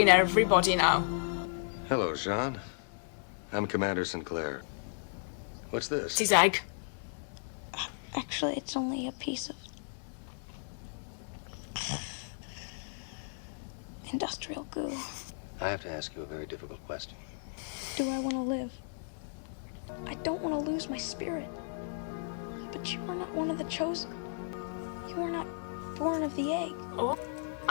everybody now? Hello, Jean. I'm Commander Sinclair. What's this? It's his egg. Actually, it's only a piece of industrial goo. I have to ask you a very difficult question. Do I want to live? I don't want to lose my spirit. But you are not one of the chosen. You are not born of the egg. Oh,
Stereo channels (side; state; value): right; silent; 55 dB below the other